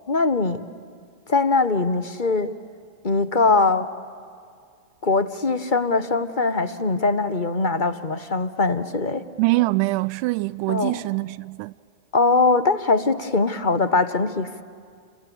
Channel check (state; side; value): late; right; 2.3 ms